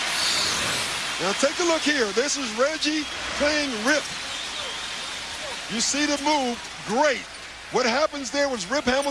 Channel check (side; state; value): both; identical; correlation 1.00